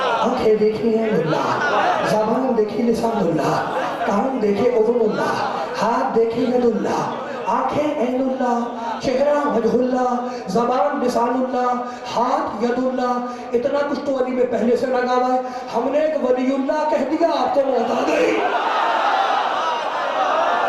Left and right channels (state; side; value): identical; both; correlation 1.00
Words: آنکھیں دیکھی ہیں اللہ، زبان دیکھی لسان اللہ، کان دیکھے اذن اللہ، ہاتھ دیکھے ید اللہ، آنکھیں عین اللہ، چہرہ وجہ اللہ، زبان لسان اللہ، ہاتھ ید اللہ۔ اتنا کچھ تو علی میں پہلے سے لگا ہوا ہے، ہم نے ایک ولی اللہ کہہ دیا، آپ کو موت آ گئی۔